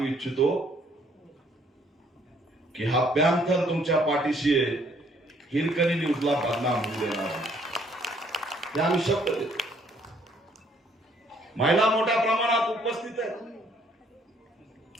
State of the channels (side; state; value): both; normal; correlation 0.65